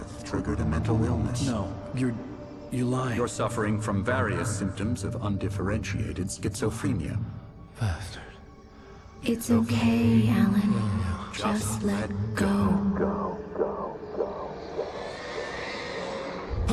triggered a mental illness. No, you lied. You're suffering from various symptoms of undifferentiated schizophrenia. Bastard. It's okay, Alan. Just let go.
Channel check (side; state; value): both; identical; correlation 1.00